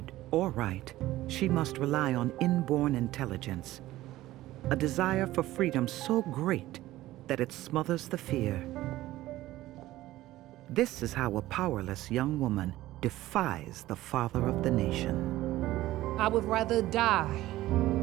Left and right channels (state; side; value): quieter; left; 16.0 dB